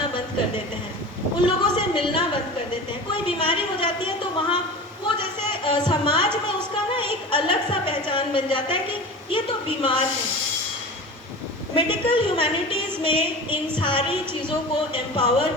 बंद कर देते हैं, उन लोगों से मिलना बंद कर देते हैं। कोई बीमारी हो जाती है तो वहाँ वो जैसे समाज में उसका ना एक अलग सा पहचान बन जाता है कि ये तो बीमार है। मेडिकल ह्यूमैनिटीज़ में इन सारी चीज़ों को एम्पावर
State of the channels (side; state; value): both; normal; correlation 0.33